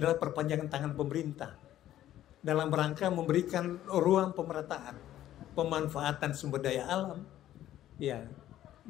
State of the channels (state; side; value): quieter; right; 12.8 dB